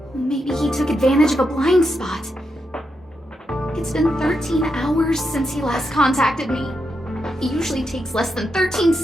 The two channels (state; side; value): normal; both; correlation 0.84